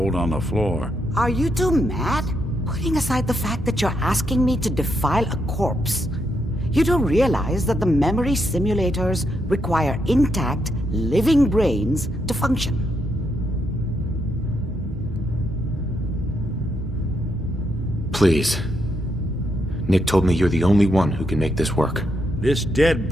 on the floor. Are you two mad? Putting aside the fact that you're asking me to defile a corpse, you do realize that the memory simulators require intact, living brains to function. Please. Nick told me you're the only one who can make this work. This dead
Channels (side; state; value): both; normal; correlation 0.79